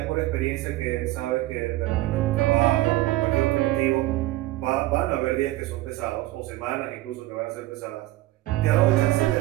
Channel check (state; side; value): quieter; left; 17.1 dB